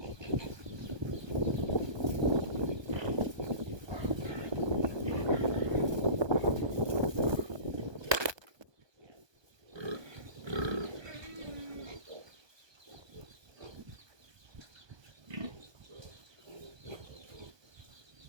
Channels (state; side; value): late; left; 1.2 ms